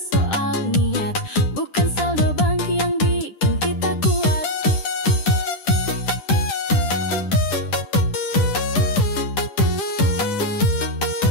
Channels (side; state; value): right; late; 10 ms